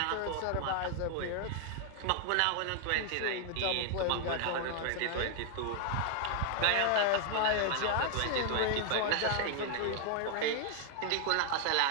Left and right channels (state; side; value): different; both; correlation 0.00